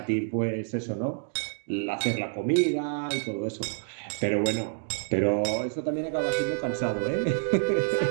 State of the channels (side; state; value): left; silent; 59 dB below the other